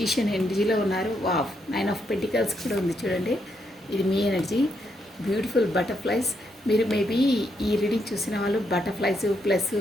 ఎనర్జీలో ఉన్నారు. వావ్, 9 ఆఫ్ పెంటికల్స్ కూడా ఉంది చూడండి. ఇది మీ ఎనర్జీ. Beautiful butterflies. మీరు మేబీ ఈ రీడింగ్ చూసిన వాళ్ళు బటర్ఫ్లైస్ ప్లస్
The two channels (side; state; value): both; normal; correlation 0.78